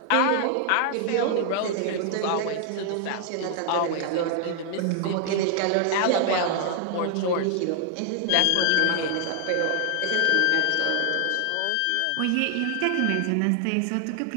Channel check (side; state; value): both; different; correlation 0.00